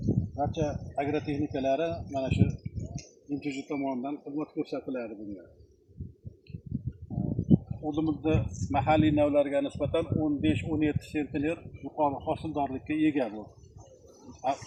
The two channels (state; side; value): identical; both; correlation 1.00